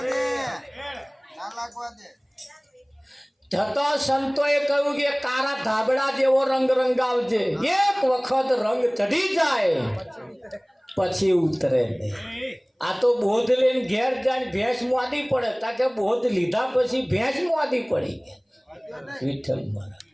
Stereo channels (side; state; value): both; identical; correlation 1.00